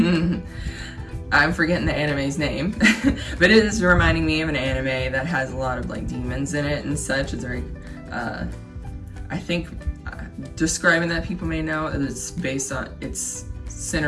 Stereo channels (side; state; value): both; identical; correlation 1.00